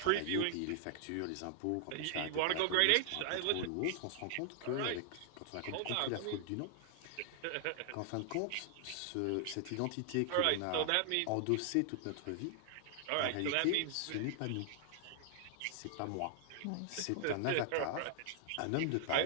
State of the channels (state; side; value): different; both; correlation 0.00